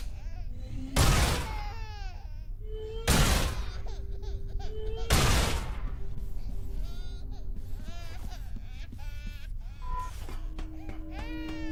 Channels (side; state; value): both; identical; correlation 1.00